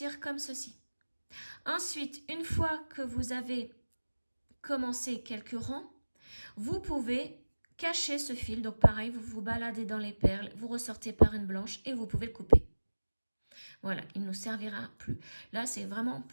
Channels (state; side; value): inverted; both; correlation -1.00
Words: comme ceci. Ensuite, une fois que vous avez commencé quelques rangs, vous pouvez cacher ce fil. Donc pareil, vous vous baladez dans les perles, vous ressortez par une blanche et vous pouvez le couper. Voilà, il ne nous servira plus. Là, c'est vraiment